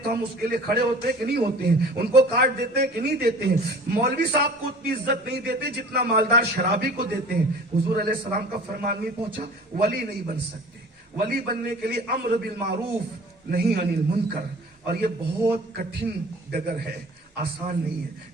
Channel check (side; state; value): both; normal; correlation 0.44